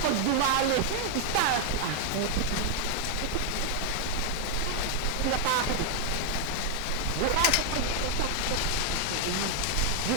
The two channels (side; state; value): both; different; correlation 0.00